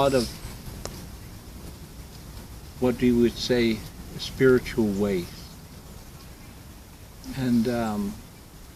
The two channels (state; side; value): identical; both; correlation 1.00